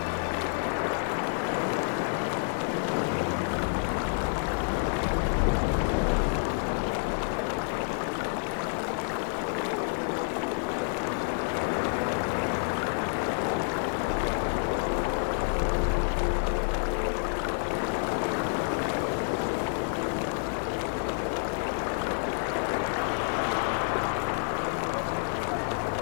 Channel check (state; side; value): silent; right; 59 dB below the other